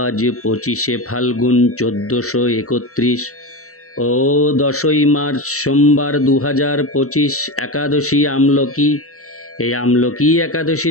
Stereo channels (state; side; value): late; right; 0.64 ms